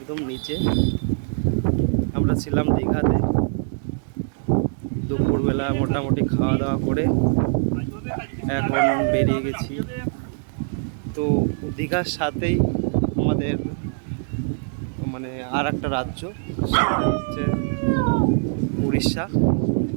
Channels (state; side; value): silent; left; digital silence